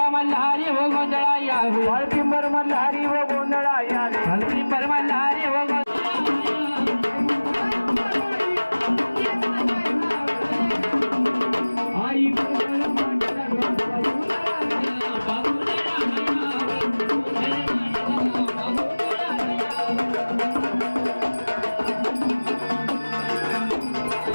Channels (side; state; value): both; inverted; correlation -1.00